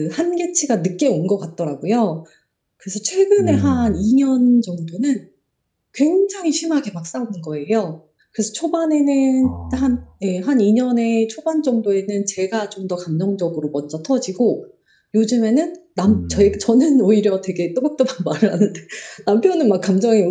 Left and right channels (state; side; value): identical; both; correlation 1.00